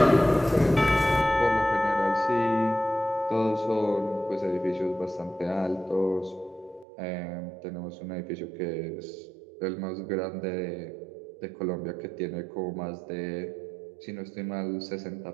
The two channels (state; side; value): drops out; left; at 6.9 s